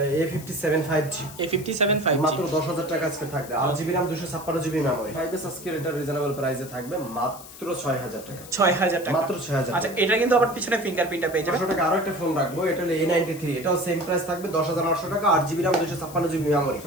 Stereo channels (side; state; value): left; noise; hiss, 17 dB below the sound